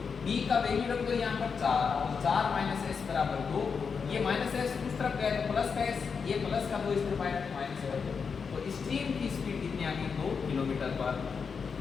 b का वैल्यू रख दो यहाँ पर 4, तो 4 - s बराबर 2। ये -s उस तरफ गया तो प्लस का s, ये प्लस का 2 इस तरफ आया तो माइनस का 2। तो स्ट्रीम की स्पीड कितनी आ गई? 2 किलोमीटर पर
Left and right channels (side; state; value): right; quieter; 5.8 dB